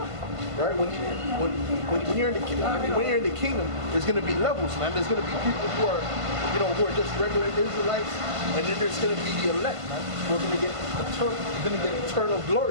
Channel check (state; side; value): late; left; 1.5 ms